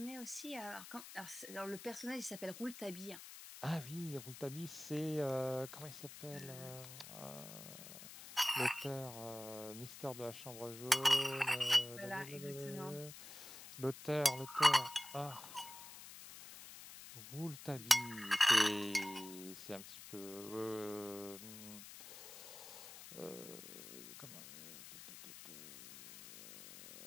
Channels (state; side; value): noise; left; hiss, 13 dB below the sound